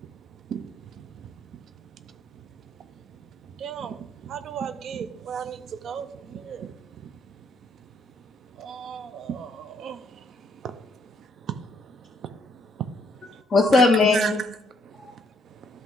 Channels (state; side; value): normal; both; correlation 0.69